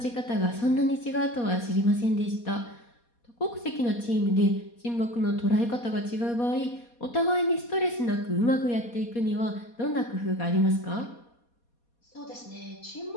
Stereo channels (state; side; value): late; right; 4.2 ms